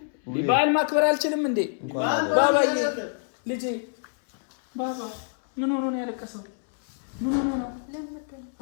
በዓል ማክበር አልችልም እንዴ? ባባዬ ልጄ ባባ ምን ሆኖ ነው ያለቀሰው? ምን ሆኖ ነው?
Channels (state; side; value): silent; right; 61 dB below the other